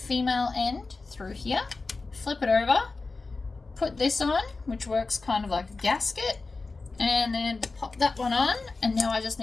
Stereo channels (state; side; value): quieter; right; 3.8 dB